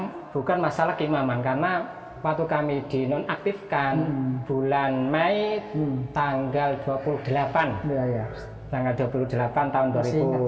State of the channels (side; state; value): both; identical; correlation 1.00